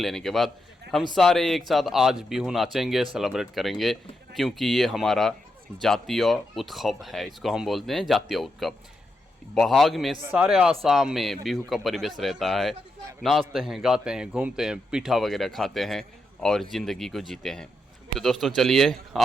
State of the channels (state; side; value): normal; both; correlation 0.84